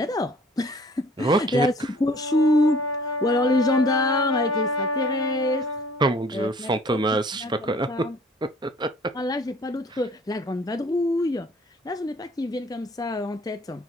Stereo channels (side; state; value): both; normal; correlation 0.53